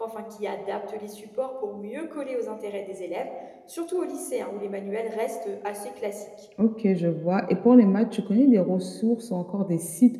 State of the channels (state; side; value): identical; both; correlation 1.00